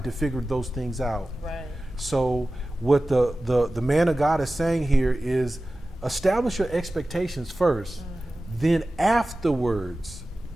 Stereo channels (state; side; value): normal; both; correlation 0.96